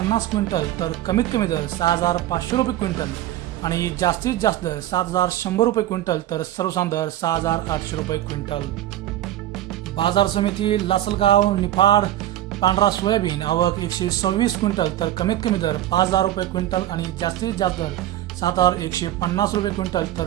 क्विंटल तर कमीत कमी दर 6,500 रुपये क्विंटल आणि जास्तीत जास्त दर 7,100 रुपये क्विंटल तर सर्वसाधारण दर 6,800 रुपये क्विंटल. बाजार समिती लासलगाव. निफाड. पांढरा सोयाबीन. आवक 126 क्विंटल तर कमीत कमी दर 5,000 रुपये क्विंटल आणि जास्तीत जास्त दर 7,150 रुपये क्विंटल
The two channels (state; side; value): quieter; left; 13.4 dB